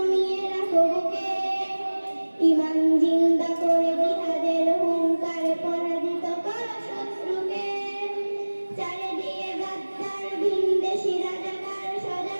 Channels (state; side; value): inverted; both; correlation -1.00